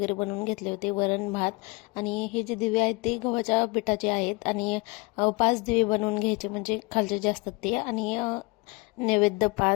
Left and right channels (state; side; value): quieter; right; 26.0 dB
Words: बनवून घेतले होते, वरण भात. आणि हे जे दिवे आहेत ते गव्हाच्या पिठाचे आहेत आणि 5 दिवे बनवून घ्यायचे, म्हणजे खालचे जे असतात ते. आणि नैवेद्य